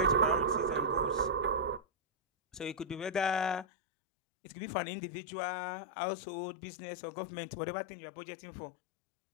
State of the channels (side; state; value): right; drops out; at 3.7 s